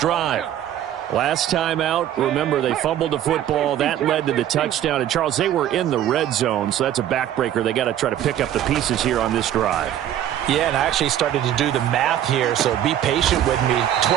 drive. Last time out, remember, they fumbled the football. That led to the touchdown. And, Charles, they were in the red zone, so that's a backbreaker. They got to try to pick up the pieces here on this drive. Yeah, and I actually started to do the math here, so be patient with me.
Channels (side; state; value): left; quieter; 11.3 dB